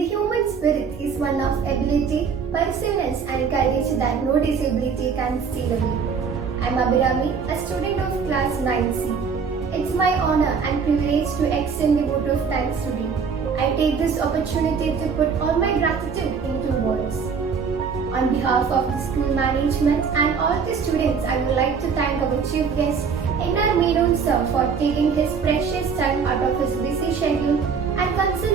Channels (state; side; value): quieter; left; 5.9 dB